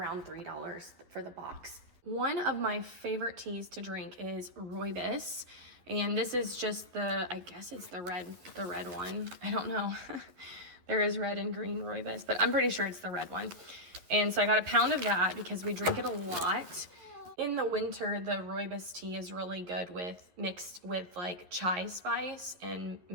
$3 for the box. One of my favorite teas to drink is rooibos. And this is just the, I guess it's the red one. I don't know. There is red and green rooibos, but I'm pretty sure it's the red one. And so I got a pound of that because we drink it a lot. In the winter, the rooibos tea is really good mixed with like chai spice and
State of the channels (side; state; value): left; late; 11 ms